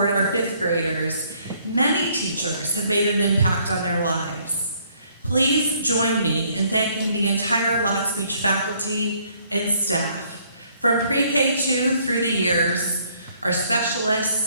our fifth graders, many teachers have made an impact on their lives. Please join me in thanking the entire Lotspeich faculty and staff, from pre-K2 through the years, our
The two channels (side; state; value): both; inverted; correlation -0.65